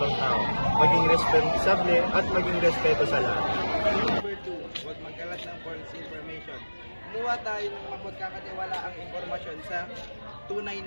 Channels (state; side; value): inverted; both; correlation -1.00